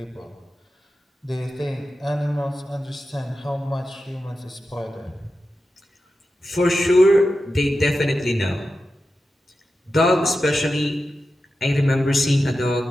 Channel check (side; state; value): both; normal; correlation 0.91